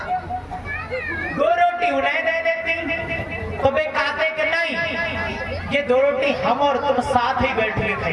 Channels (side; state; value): both; identical; correlation 1.00